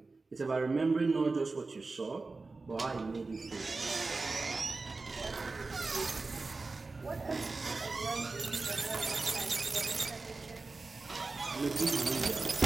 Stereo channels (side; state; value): left; quieter; 3.7 dB